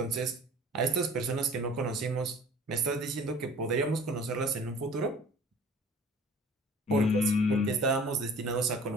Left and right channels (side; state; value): both; normal; correlation 0.47